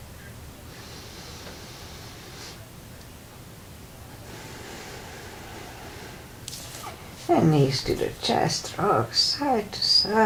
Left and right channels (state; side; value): identical; both; correlation 1.00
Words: And knees to the chest, rock side to